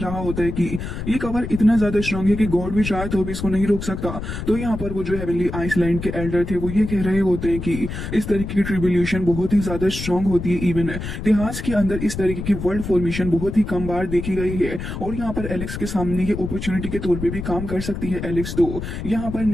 होता है कि ये कवर इतना ज्यादा स्ट्रांग है कि गॉड भी चाहे तो भी इसको नहीं रोक सकता। तो यहाँ पर वो जो हेवनली आइसलैंड के एल्डर थे वो ये कह रहे होते हैं कि इस तरीके की ट्रिब्यूलेशन बहुत ही ज्यादा स्ट्रांग होती है। इवन इतिहास के अंदर इस तरीके की वर्ल्ड फॉर्मेशन बहुत ही कम बार देखी गई है और यहाँ पर एलेक्स के सामने ये अपॉर्चुनिटी के तौर पर भी काम कर सकती है। एलेक्स तो यहाँ पर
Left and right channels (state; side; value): noise; left; rumble, 6 dB below the sound